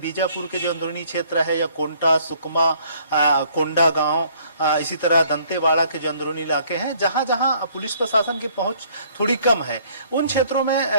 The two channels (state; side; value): inverted; both; correlation -0.61